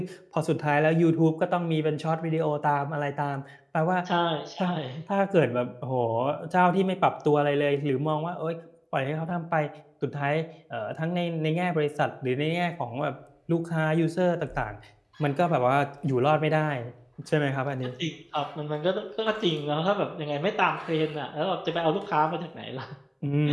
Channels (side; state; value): both; identical; correlation 1.00